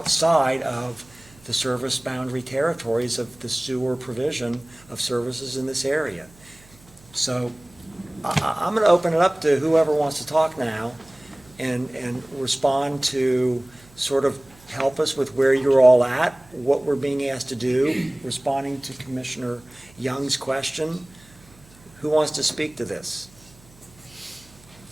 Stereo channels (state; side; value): noise; right; hum, 26 dB below the sound